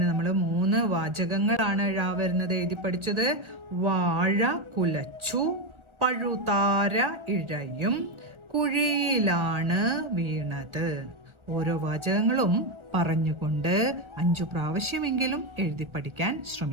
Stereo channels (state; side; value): late; left; 1.4 ms